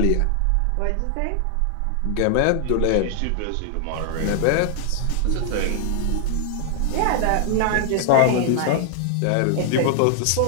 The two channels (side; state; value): both; different; correlation 0.00